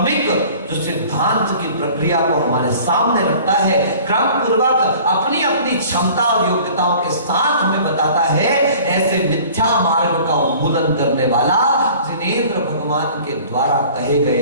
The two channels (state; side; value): inverted; both; correlation -0.47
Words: जो सिद्धांत की प्रक्रिया को हमारे सामने रखता है, क्रम पूर्वक अपनी अपनी क्षमता और योग्यताओं के साथ हमें बताता है। ऐसे मिथ्या मार्ग का उन्मूलन करने वाला जिनेंद्र भगवान के द्वारा कहे